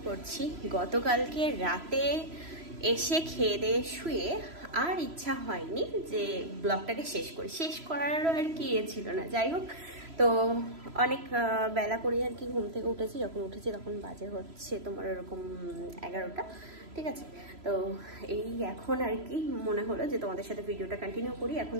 করছি। গতকালকে রাতে এসে খেয়ে দিয়ে শুয়ে আর ইচ্ছা হয়নি যে ব্লগটাকে শেষ করারও আর কি ছিল না। যাই হোক, তো অনেক বেলা করে আর কি ঘুম থেকে উঠেছি। যখন উঠেছি তখন বাজে হচ্ছে তোমার ওরকম 11টা, ঠিক আছে। তো এই এখন আর কি মনে হলো যে তোমাদের সাথে ভিডিওটা কন্টিনিউ করি। এখন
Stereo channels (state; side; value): late; left; 3.0 ms